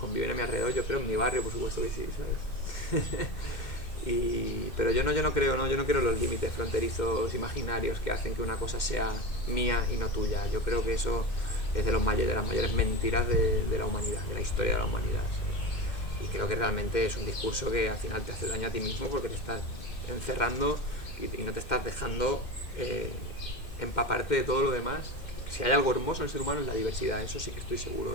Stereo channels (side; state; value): right; late; 2.1 ms